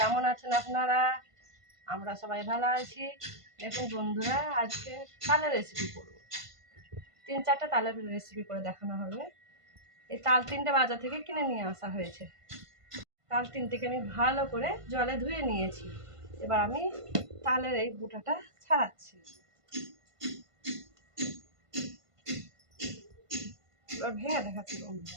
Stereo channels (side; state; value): left; late; 1.5 ms